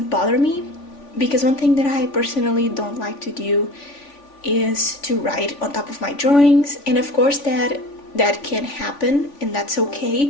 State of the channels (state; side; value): late; right; 3.5 ms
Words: bother me. Because one thing that I personally don't like to do is to write on top of my drawings, and of course that can happen and that's